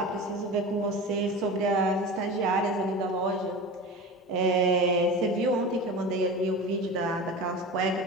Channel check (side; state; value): both; normal; correlation 0.30